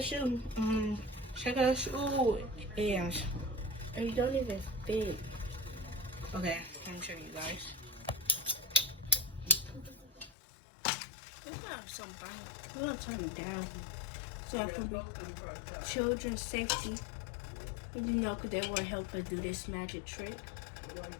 shoe. Check the shoe. Yeah. And you don't even fit. Okay, let me show you guys. It's not something. You want to turn it down so I can be children's safety. You know, because they want to help us do this magic trick.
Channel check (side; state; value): right; drops out; at 10.3 s